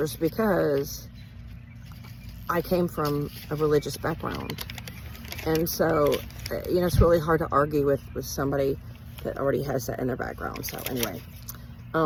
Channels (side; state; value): both; identical; correlation 1.00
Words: because I came from a religious background. And so, you know, it's really hard to argue with somebody that already has that in their background. So anyway,